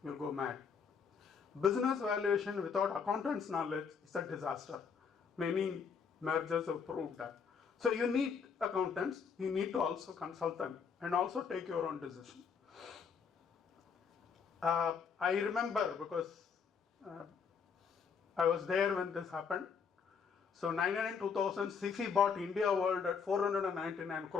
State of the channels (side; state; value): right; quieter; 6.2 dB